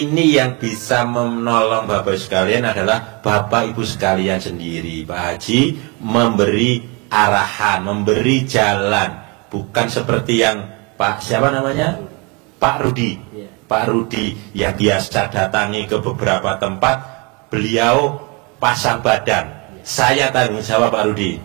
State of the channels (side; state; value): left; quieter; 29.0 dB